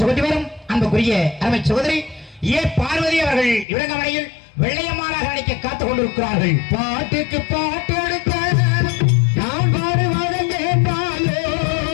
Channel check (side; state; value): right; drops out; at 3.7 s